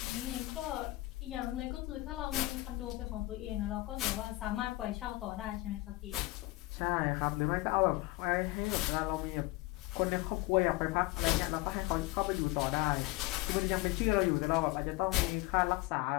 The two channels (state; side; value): quieter; right; 19.9 dB